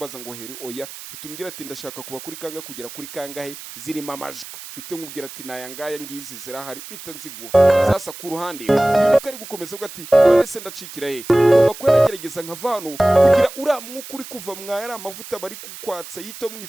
ngo heri oya hitumbwira ati ndashaka kuba kuri kanga kugera kuri kangahe zirimo amajwi bite nkubwira ati nayangaya ngizi zirahari mpita nziguha. Sasa ku ruhande yuko ari gukomeza uvuga ati none se ndacikira he ngomba ko nagerageza nkavano kugira uramwuka uri kuva mwaya amavuta bari kukwatsa yito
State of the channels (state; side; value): noise; right; hiss, 14 dB below the sound